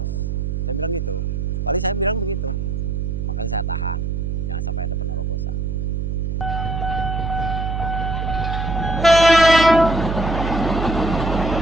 Saya bilang gitu. Paling saya bilang begitu. Makanya saya tahan. Jangan sampai ada penerobosan.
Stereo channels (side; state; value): right; noise; hum, 2 dB below the sound